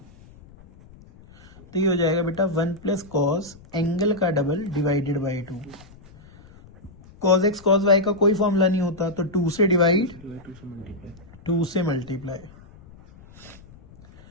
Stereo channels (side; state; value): left; noise; rumble, 23 dB below the sound